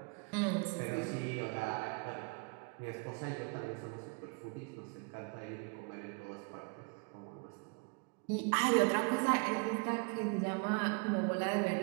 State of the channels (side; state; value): left; quieter; 34.8 dB